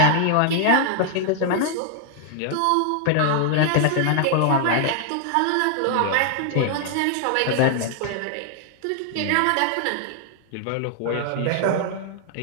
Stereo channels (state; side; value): different; both; correlation 0.00